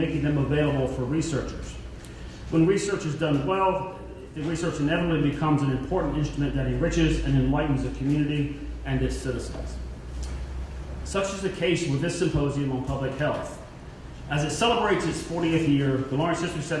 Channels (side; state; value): both; identical; correlation 1.00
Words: them available for researchers. When research is done well, the research inevitably becomes an important instrument that enriches and enlightens the community and its citizens. Such is the case with this symposium on public health. As it celebrates its 40th year, the Lawrence History